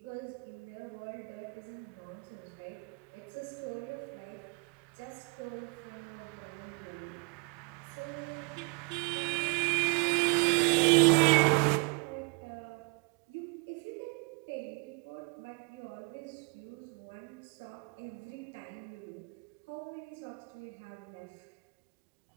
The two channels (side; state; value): left; quieter; 33.8 dB